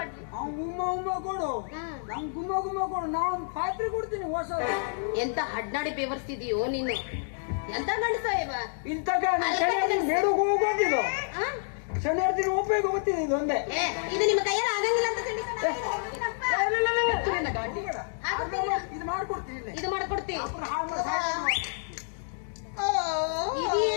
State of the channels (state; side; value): silent; right; digital silence